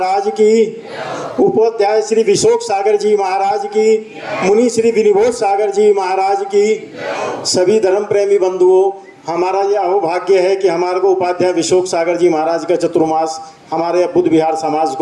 की, उपाध्याय श्री विशोक सागर जी महाराज की, मुनि श्री विनिबोध सागर जी महाराज की। सभी धर्म प्रेमी बंधुओं, हमारा यह अहोभाग्य है कि हमारे को उपाध्याय विशोक सागर जी महाराज का चतुर्मास हमारे बुद्ध विहार समाज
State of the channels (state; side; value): identical; both; correlation 1.00